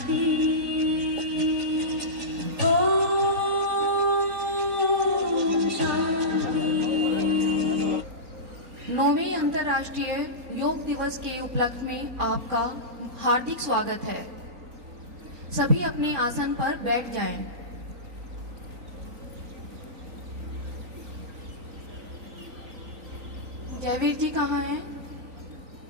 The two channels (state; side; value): late; left; 3.9 ms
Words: नौवें अंतर्राष्ट्रीय योग दिवस के उपलक्ष्य में आपका हार्दिक स्वागत है। सभी अपने आसन पर बैठ जाएं। जयवीर जी कहाँ हैं?